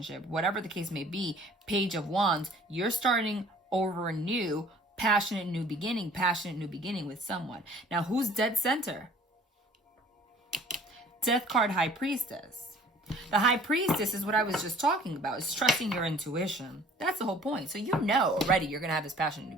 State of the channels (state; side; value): normal; both; correlation 0.53